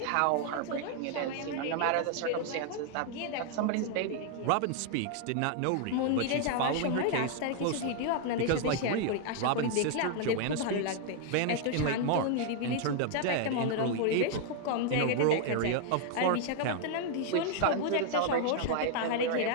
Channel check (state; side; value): different; both; correlation 0.00